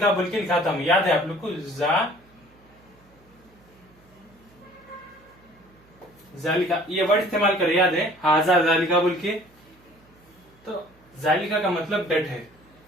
बोल के लिखा था मैं, याद है आप लोग को, जालिका ये वर्ड इस्तेमाल करे, याद है, हाजा जालिका बोल के, तो जालिका का मतलब दैट है,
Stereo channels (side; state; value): right; noise; hum, 30 dB below the sound